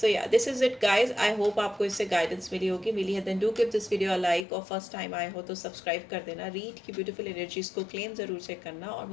सो या this is it guys. I hope आपको इससे गाइडेंस मिली है। Then do give this video a like, और फर्स्ट टाइम आए हो तो सब्सक्राइब कर देना। रीड की ब्यूटीफुल एनर्जीज को क्लेम ज़रूर से करना, और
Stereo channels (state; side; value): drops out; right; at 4.5 s